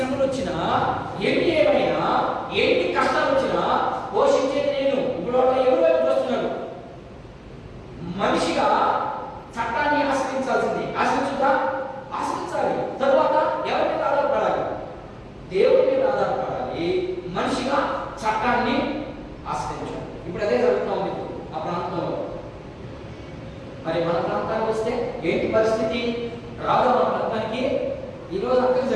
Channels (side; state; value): both; identical; correlation 1.00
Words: వచ్చినా, ఎన్ని ఏమైనా, ఎన్ని కష్టాలు వచ్చినా పోషించేది నేను. ఇప్పుడు ఎవరు వైపు చూస్తున్నాడు? మనిషిగా చట్టాన్ని ఆశ్రయించాల్సింది. ఆశ్రయించుదా? ఆశ్రయించాలి. తరువాత ఎవరి మీద ఆధారపడాలి? దేవుడి మీద ఆధారపడాలి. మనిషిగా చట్టాన్ని ఆశ్రయించాలి. ఇప్పుడు అదే జరుగుతుంది ఆ ప్రాంతంలో. మరి మన ప్రాంతానికి వస్తే ఏంటి పరిస్థితి? రాదు మన ప్రాంతానికి. ఈరోజు అక్కడికి